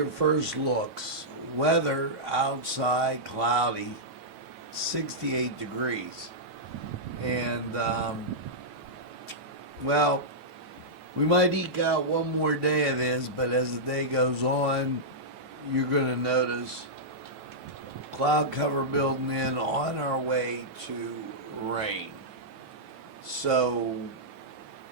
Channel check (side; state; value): left; late; 9.1 ms